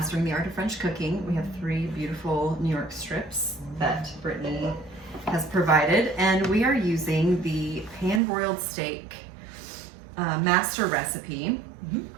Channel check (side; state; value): left; drops out; at 8.2 s